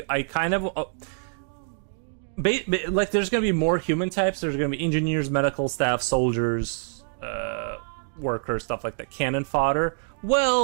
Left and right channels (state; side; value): silent; left; digital silence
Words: kind of. Like there's gonna be more human types. There's gonna be engineers, medical staff, soldiers, workers, stuff like that. Cannon fodder.